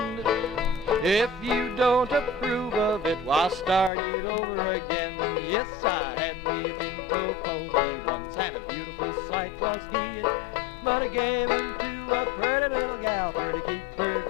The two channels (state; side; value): drops out; right; at 3.9 s